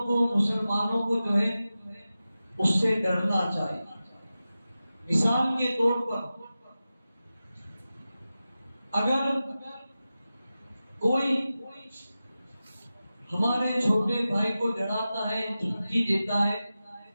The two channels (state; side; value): inverted; both; correlation -0.94